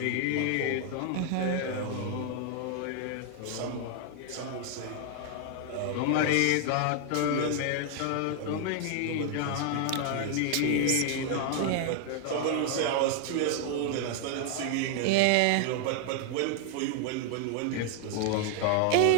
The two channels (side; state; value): both; different; correlation 0.00